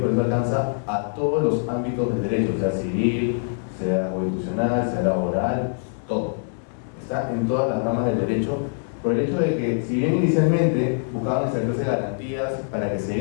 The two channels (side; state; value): right; silent; digital silence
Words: proceso alcanza a todos los ámbitos del derecho, sea civil, sea constitucional, sea laboral, todo. Está en todas las ramas del derecho, por el hecho de que, si bien inicialmente buscaban establecerse garantías para que se